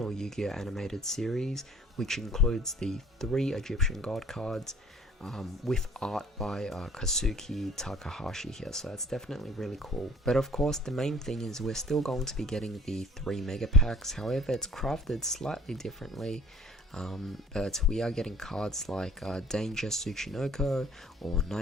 Yu-Gi-Oh animated series, which includes the 3 Egyptian god cards with art by Kazuki Takahashi here, so that's definitely really cool. But of course the main thing is we're still going to be getting the 3 mega packs. However, it's crafted slightly differently, but we are getting cards like Danger Tsuchinoko or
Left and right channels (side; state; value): both; normal; correlation 0.54